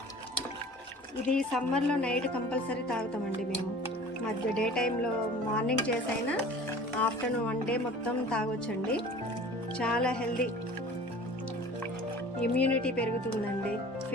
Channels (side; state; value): both; normal; correlation 0.44